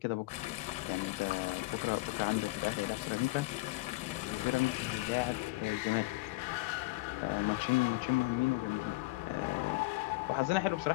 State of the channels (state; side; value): quieter; right; 21.3 dB